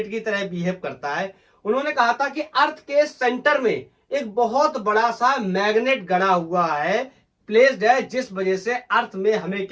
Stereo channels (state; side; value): identical; both; correlation 1.00